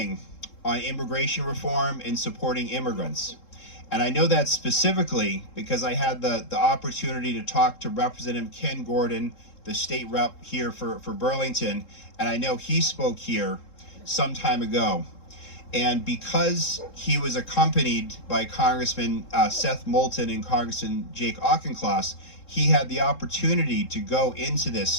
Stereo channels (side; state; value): right; late; 3.7 ms